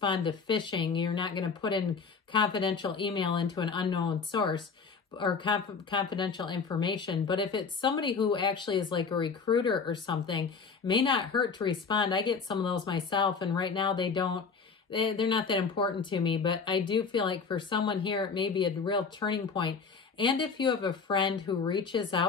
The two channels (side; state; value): right; quieter; 5.3 dB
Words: to phishing. You're not going to put in confidential email into an unknown source or confidential information. But if it's somebody who actually is like a recruiter or something, it may not hurt to respond. I get some of those myself, and right now they're not that important to me, but I do feel like for someone here, it may be a real turning point. And if you have a friend who reaches